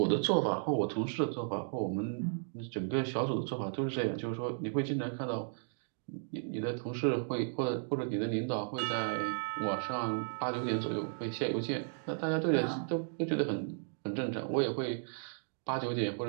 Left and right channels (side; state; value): left; silent; digital silence